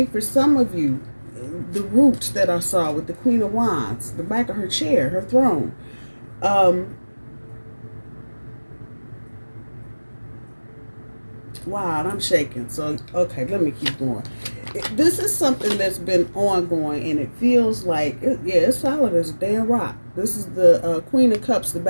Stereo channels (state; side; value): inverted; both; correlation -1.00